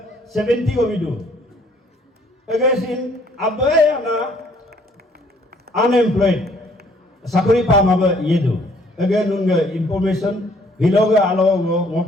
70 govido. Again, Abayana unemployed. Sakori pamaba yedo. Again, nunga information. Hiloga alo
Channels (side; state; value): both; normal; correlation 0.62